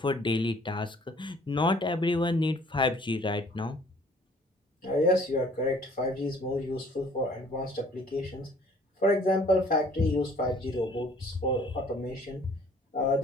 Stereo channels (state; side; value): normal; both; correlation 0.56